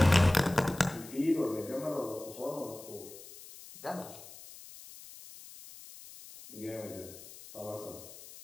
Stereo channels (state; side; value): noise; left; hiss, 17 dB below the sound